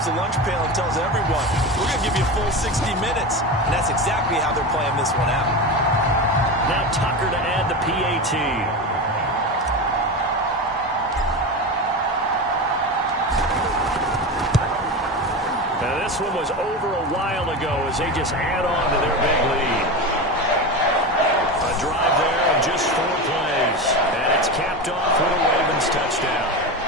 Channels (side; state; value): both; normal; correlation 0.23